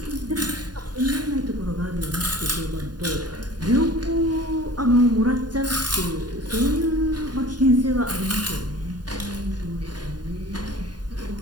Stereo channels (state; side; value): late; left; 0.70 ms